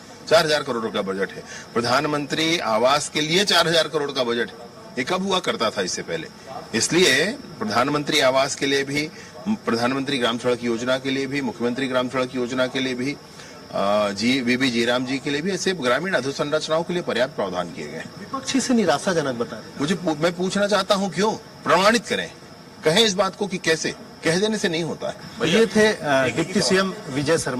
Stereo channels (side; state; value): both; identical; correlation 1.00